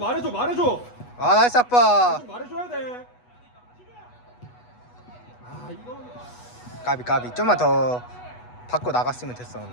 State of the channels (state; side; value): late; right; 8.2 ms